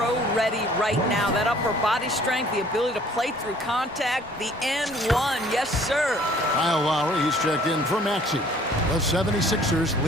right now. That upper body strength, the ability to play through contact, the and one, yes, sir. Kyle Lowry, he's checked in for Maxey. The 76ers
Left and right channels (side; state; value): both; normal; correlation 0.55